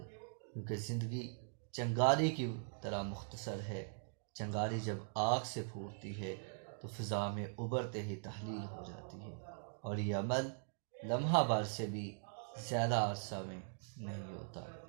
کیونکہ زندگی چنگاری کی طرح مختصر ہے۔ چنگاری جب آگ سے پھوٹتی ہے تو فضا میں ابھرتے ہی تحلیل ہو جاتی ہے، اور یہ عمل لمحہ بھر سے بھی زیادہ عرصہ میں نہیں ہوتا۔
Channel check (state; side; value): silent; left; digital silence